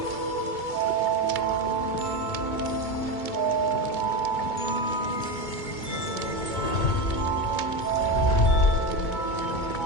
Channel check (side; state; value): right; late; 2.2 ms